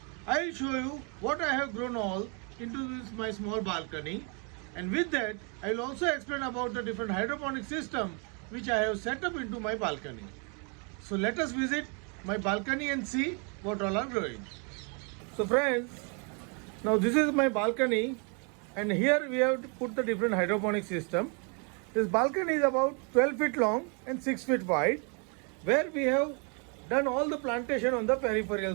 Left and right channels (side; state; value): left; quieter; 36.5 dB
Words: I will show you what I have grown all into this my small balcony, and with that I will also explain about the different hydroponic system which I have set up into my balcony. So let us visit my balcony and see what all are growing. So friends, now this is my balcony and here we have put the different hydroponic system. This balcony is about 12 feet long and 6 feet wide, where we have done all the plantation on the